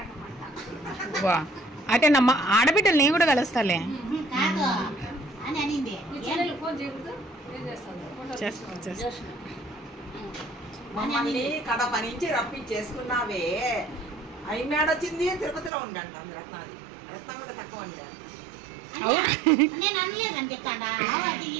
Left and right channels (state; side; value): drops out; left; at 15.7 s